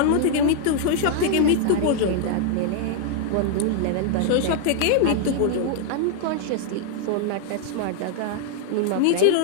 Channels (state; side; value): different; both; correlation 0.00